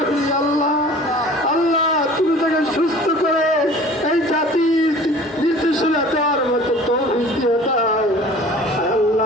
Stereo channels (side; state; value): both; normal; correlation 0.45